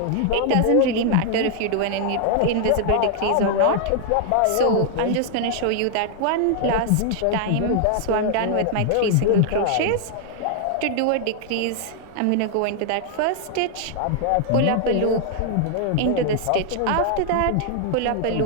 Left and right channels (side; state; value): both; different; correlation 0.00